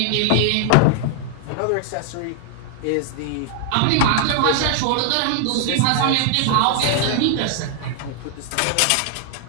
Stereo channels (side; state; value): both; different; correlation 0.00